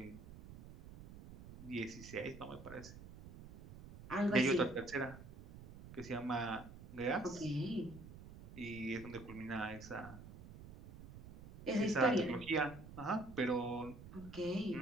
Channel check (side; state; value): right; noise; rumble, 15 dB below the sound